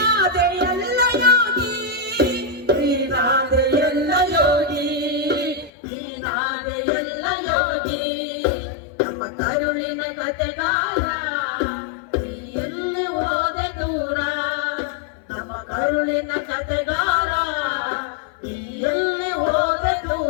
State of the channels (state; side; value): drops out; right; at 5.7 s